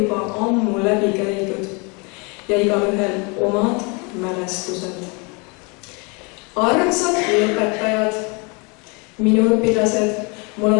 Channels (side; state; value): right; quieter; 30.9 dB